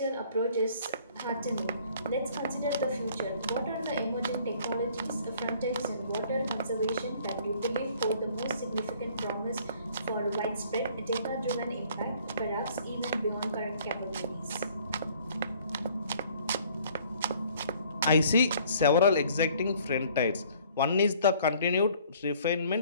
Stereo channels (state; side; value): inverted; both; correlation -0.57